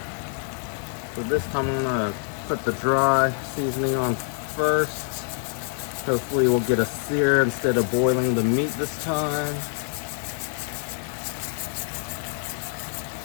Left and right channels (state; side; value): silent; right; 61 dB below the other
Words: So this time I'm gonna put the dry seasoning on first. Hopefully we'll get a sear instead of boiling the meat this time.